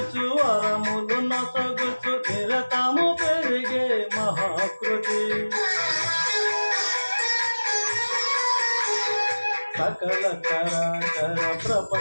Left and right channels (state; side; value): inverted; both; correlation -1.00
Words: వరములు నొసగుచు నిరతము పెరిగే మహాకృతి. సకల చరాచర